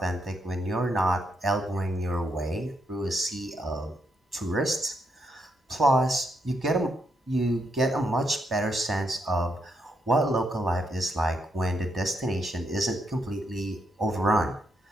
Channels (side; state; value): both; normal; correlation 0.78